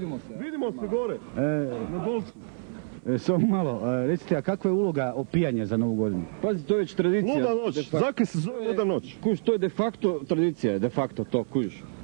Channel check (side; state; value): left; silent; 60 dB below the other